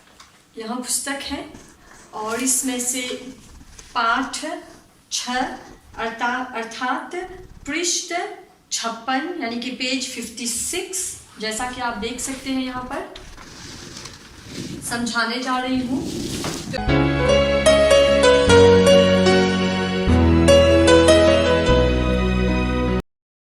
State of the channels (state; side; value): identical; both; correlation 1.00